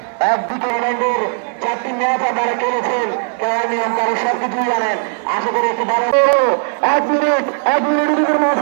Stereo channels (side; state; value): left; silent; 68 dB below the other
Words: একদিকে ইংল্যান্ডের 4টি ম্যাচ আপনারা খেলেছেন, কেউ নিয়ম কারো সব কিছুই জানেন। আশা করি একটু ভালো 1 মিনিটের ভিতরে ম্যাচ